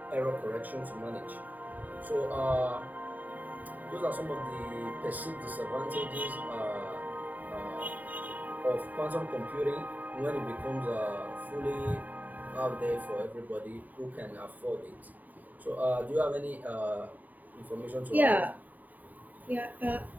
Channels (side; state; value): left; late; 0.082 ms